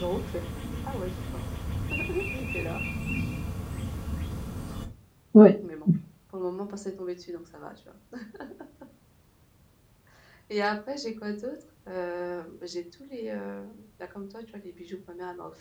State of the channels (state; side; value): identical; both; correlation 1.00